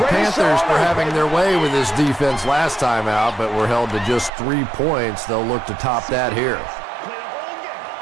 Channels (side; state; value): left; drops out; at 4.3 s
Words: Panthers were having their way with this defense last time out, but were held to just 3 points. They'll look to top that here.